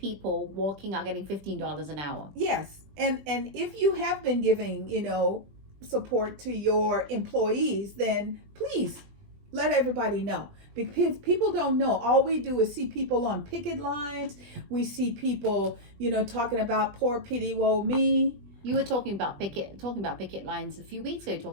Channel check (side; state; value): left; late; 20 ms